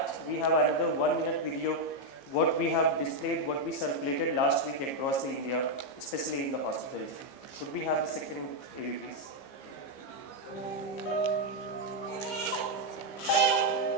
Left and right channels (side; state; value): right; late; 15 ms